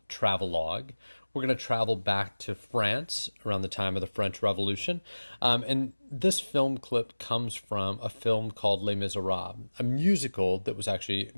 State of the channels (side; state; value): both; inverted; correlation -1.00